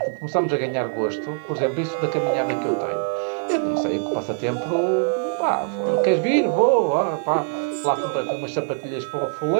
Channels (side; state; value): left; silent; 63 dB below the other